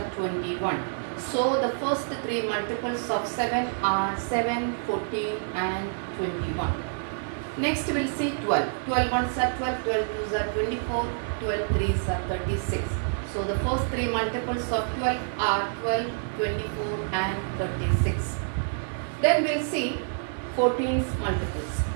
21. So the first three multiples of 7 are 7, 14 and 21. Next we'll see 12. 12 1s are 12, 12 2s are 24, 12 3s are 36. So the first three multiples of 12 are 12, 24 and 36. Then we'll see 14's multiples.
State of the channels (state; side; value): silent; left; 59 dB below the other